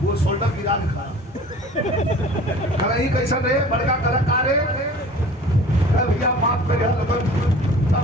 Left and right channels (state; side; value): normal; both; correlation 0.44